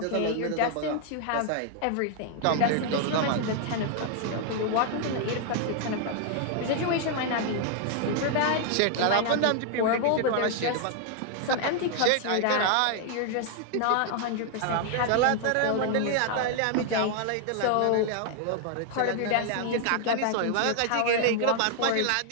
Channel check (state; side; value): different; both; correlation 0.00